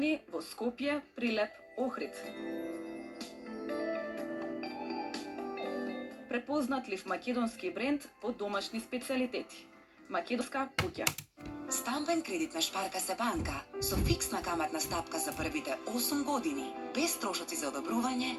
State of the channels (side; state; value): both; identical; correlation 1.00